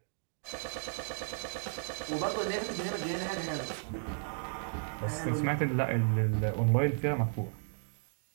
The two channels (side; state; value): left; silent; digital silence